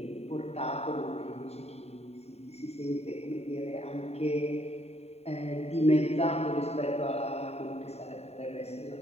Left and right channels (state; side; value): late; right; 0.30 ms